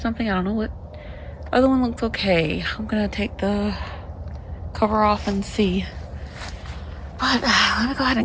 I don't know what. Other one looks okay. I'm gonna take the cover off and see. But let me go ahead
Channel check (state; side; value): identical; both; correlation 1.00